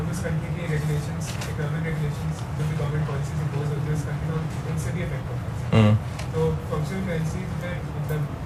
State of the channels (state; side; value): identical; both; correlation 1.00